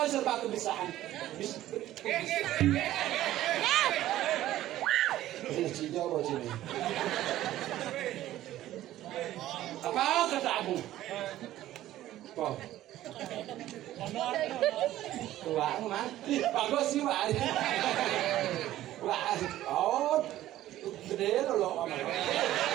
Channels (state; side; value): quieter; left; 14.1 dB